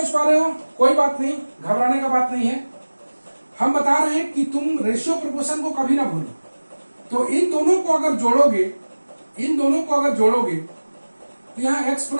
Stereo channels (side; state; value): both; inverted; correlation -1.00